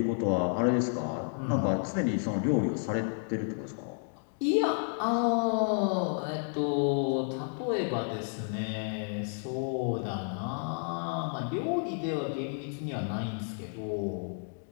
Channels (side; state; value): right; silent; 57 dB below the other